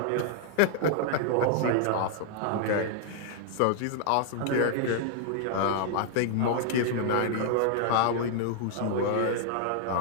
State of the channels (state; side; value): different; both; correlation 0.00